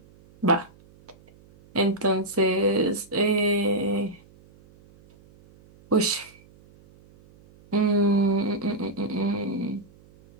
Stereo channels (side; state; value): right; noise; hum, 27 dB below the sound